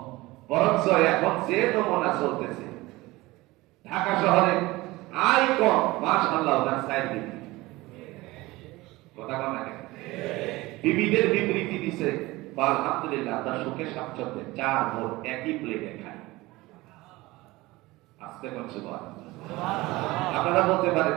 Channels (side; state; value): left; quieter; 20.2 dB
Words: বরঞ্চ এখন যে নমুনা চলতেছে ঢাকা শহরে আয় কম, মাশাআল্লাহ তার সাইড দিবে কথা কম না। বিবিদের বিবৃতি দিছে, আলহামদুলিল্লাহ তার সুখে স্বাচ্ছন্দ্যে 4 বোন একই প্লেটে খায়। আস্তে করছে বল, আপনারা বলতে পারেন